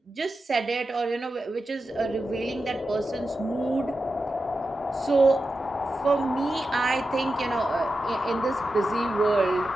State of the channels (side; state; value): both; normal; correlation 0.91